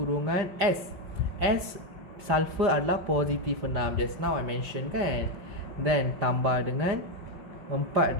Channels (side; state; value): left; late; 5.1 ms